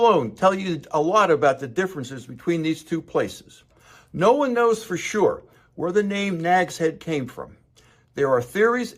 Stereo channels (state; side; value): identical; both; correlation 1.00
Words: tell you a lot about the differences between these two places. No one knows for sure where the name Nags Head came from. There are theories